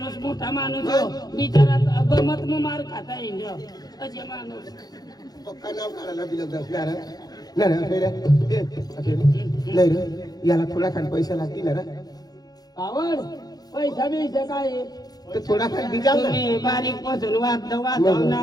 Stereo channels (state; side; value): late; right; 0.19 ms